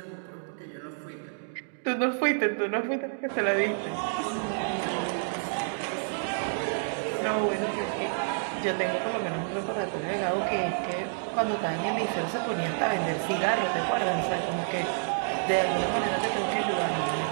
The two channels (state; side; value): silent; left; digital silence